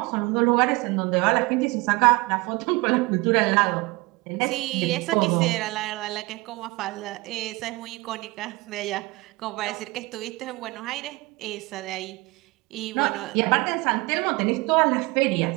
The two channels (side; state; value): left; quieter; 23.7 dB